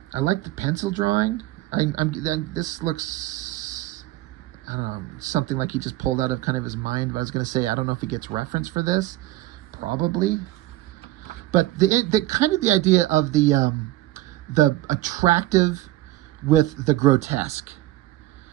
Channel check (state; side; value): quieter; left; 16.6 dB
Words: like the pencil drawing. This looks, I don't know, something like he just pulled out of kind of his mind. But I was going to say, I don't know if he gets reference for this. Probably. But the kind of the idea of the attractive with the grotesque.